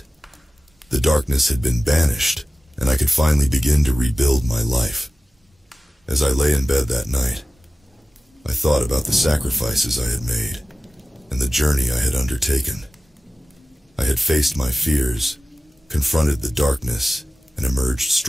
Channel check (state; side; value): normal; both; correlation 0.96